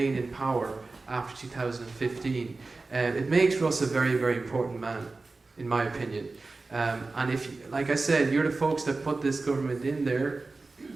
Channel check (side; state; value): left; quieter; 3.6 dB